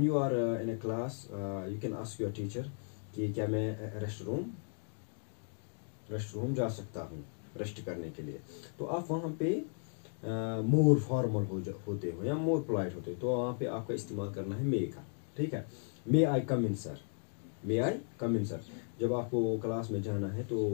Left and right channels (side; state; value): right; silent; 54 dB below the other